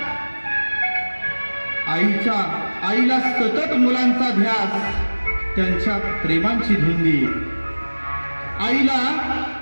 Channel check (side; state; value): both; inverted; correlation -1.00